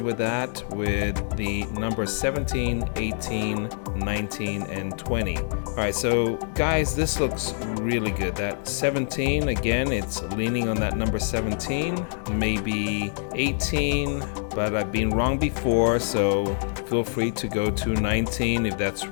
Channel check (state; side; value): silent; right; digital silence